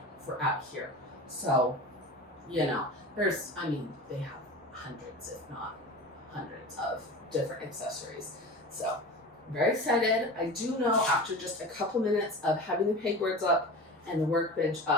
for out here. So, you know, they have hundreds, if not hundreds of different accessories. So I'm very excited. I do know after just a couple minutes of having the pegboards up and the workbench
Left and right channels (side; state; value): both; normal; correlation 0.33